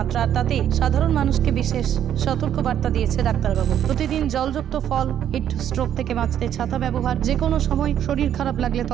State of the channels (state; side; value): quieter; left; 10.1 dB